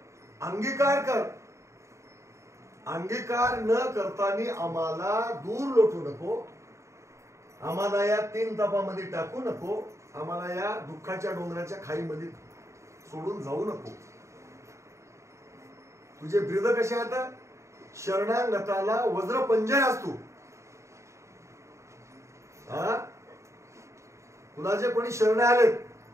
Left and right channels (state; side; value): late; left; 0.14 ms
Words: अंगीकार कर. अंगीकार न करताना आम्हाला दूर लोटू नको. आम्हाला या 3 तापामध्ये टाकू नको. आम्हाला या दुःखाच्या डोंगराच्या खाईमध्ये सोडून जाऊ नको. तुझे ब्रीद कसे आता शरणागताला वज्र पंजय असतो. तुला जे कोणी शरण आलेत